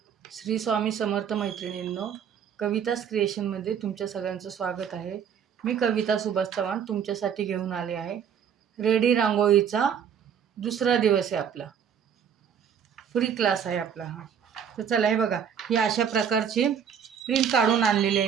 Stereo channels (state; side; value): quieter; left; 7.9 dB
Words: श्री स्वामी समर्थ मैत्रिणींनो, कवितास क्रिएशनमध्ये तुमच्या सगळ्यांचं स्वागत आहे. मी कविता सुभाष चव्हाण तुमच्यासाठी घेऊन आले आहे. रेडी रांगोळीचा दुसरा दिवस आहे. आपला फ्री क्लास आहे आपला हा. तर चला, हे बघा, ही अशा प्रकारची प्रिंट काढून आणलेली आहे